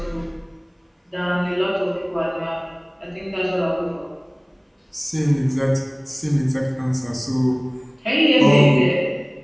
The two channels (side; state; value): both; identical; correlation 1.00